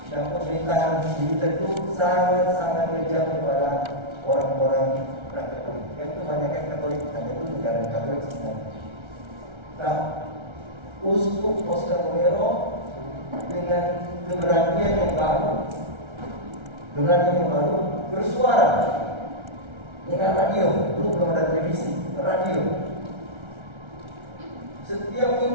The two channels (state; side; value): late; left; 1.3 ms